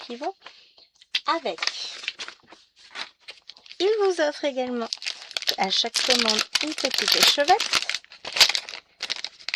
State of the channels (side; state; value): both; identical; correlation 1.00